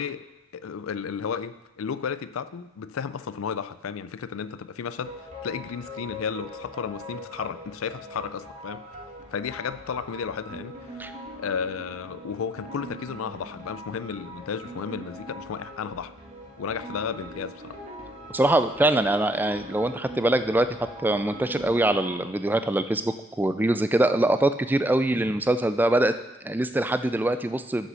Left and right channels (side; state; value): both; normal; correlation 0.64